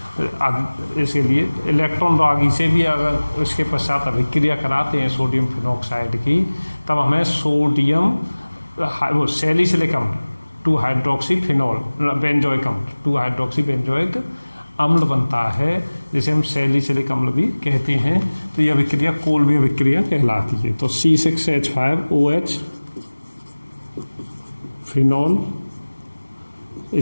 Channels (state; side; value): inverted; both; correlation -1.00